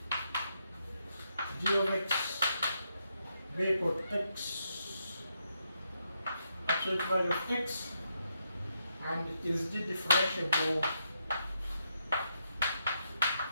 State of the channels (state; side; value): inverted; both; correlation -0.80